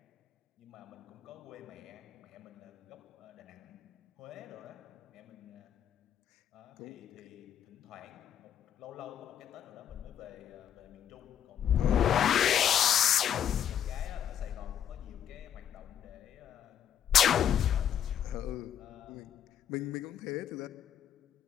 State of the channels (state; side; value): quieter; right; 9.5 dB